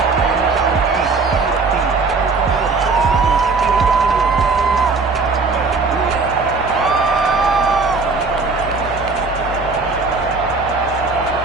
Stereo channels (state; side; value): quieter; left; 4.1 dB